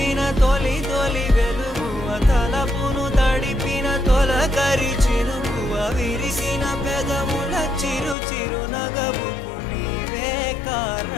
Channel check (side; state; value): right; drops out; at 8.2 s